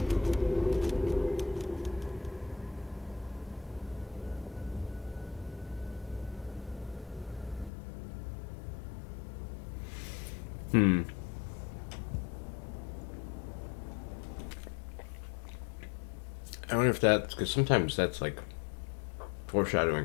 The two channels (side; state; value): right; drops out; at 7.7 s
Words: I wonder if that's because sometimes that's like foreshadowing